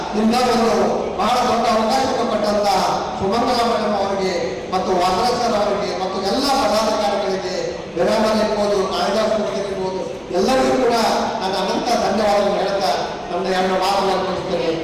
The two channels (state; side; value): identical; both; correlation 1.00